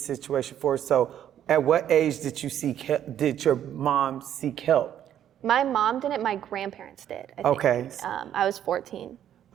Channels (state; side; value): quieter; left; 10.5 dB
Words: situation forward. So at what age did your mom seek help? My mom didn't, my grandparents did, I think. Okay. I was 14.